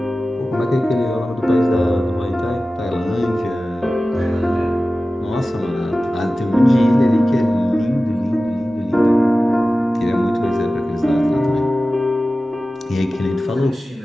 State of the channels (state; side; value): normal; both; correlation 0.95